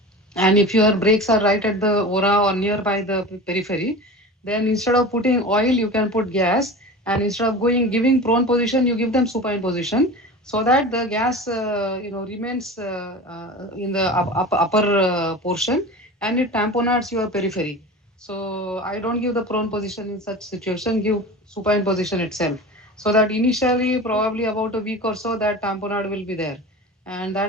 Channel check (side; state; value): both; normal; correlation 0.33